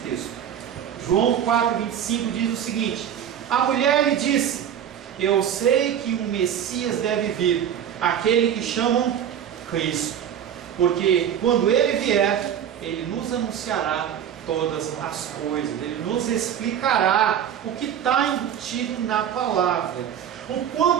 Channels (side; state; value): left; quieter; 9.3 dB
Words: texto. João 4, 25 diz o seguinte: a mulher lhe disse: eu sei que um Messias deve vir, aquele que chamam Cristo, porque quando ele vier, ele nos anunciará todas as coisas, ele nos explicará o que está embutido na palavra. O